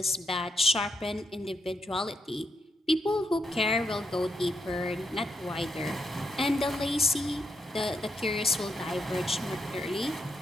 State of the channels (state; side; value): normal; both; correlation 0.80